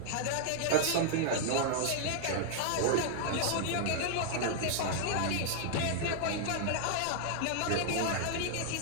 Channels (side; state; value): both; different; correlation -0.01